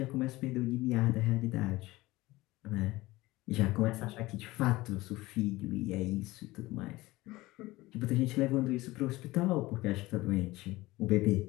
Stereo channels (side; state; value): right; quieter; 19.3 dB